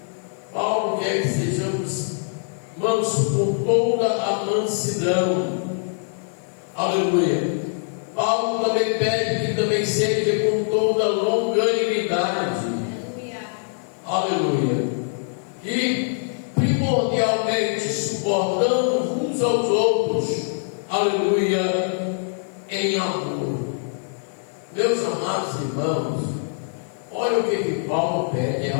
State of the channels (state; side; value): silent; right; 60 dB below the other